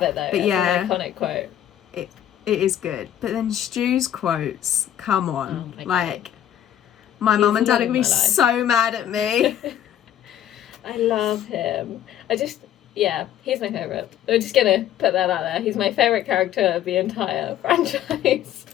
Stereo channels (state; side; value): quieter; right; 11.0 dB